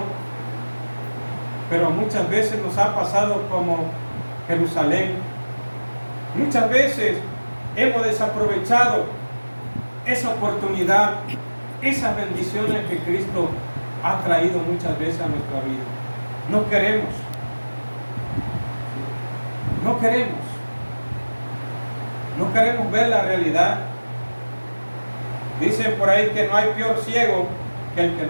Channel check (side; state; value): both; inverted; correlation -1.00